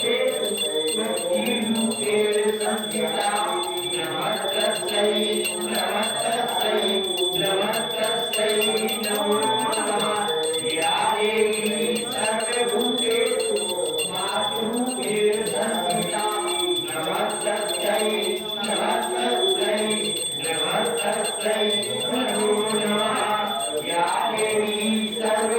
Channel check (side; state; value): both; identical; correlation 1.00